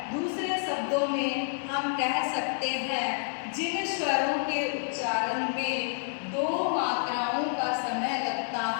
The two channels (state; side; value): silent; right; digital silence